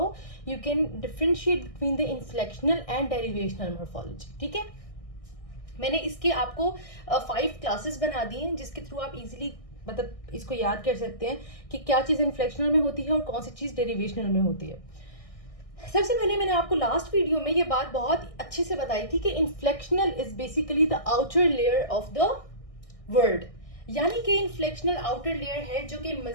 you can differentiate between the inflectional and derivational morphology. ठीक है, मैंने इसके आपको 5 क्लासेस बना दी हैं जिसके थ्रू आप इजीली मतलब इसको याद कर सकते हैं कि क्या चीज़ इन्फ्लेक्शनल में होती है और कौन सी चीज़ डेरिवेशनल में होती है. सबसे पहले मैंने आपको लास्ट वीडियो में ये बात बहुत अच्छे से बताई थी कि inflectional is basically the outer layer of the word, यानी कि इन्फ्लेक्शनल आउटर लेयर है जो कि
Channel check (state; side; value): late; right; 1.6 ms